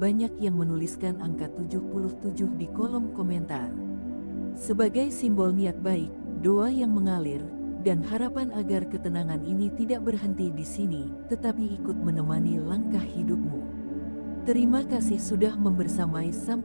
banyak yang menuliskan angka 77 di kolom komentar. Sebagai simbol niat baik, doa yang mengalir, dan harapan agar ketenangan ini tidak berhenti di sini, tetapi ikut menemani langkah hidupmu. Terima kasih sudah membersamai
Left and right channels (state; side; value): inverted; both; correlation -1.00